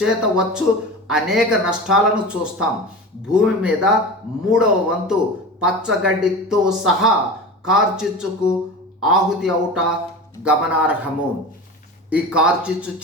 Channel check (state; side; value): normal; both; correlation 0.31